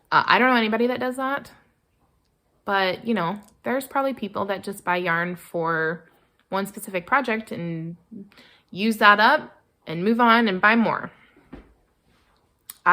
I don't know anybody that does that, but you know, there's probably people that just buy yarn for one specific project and use that up and move on and buy more.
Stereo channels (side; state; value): both; identical; correlation 1.00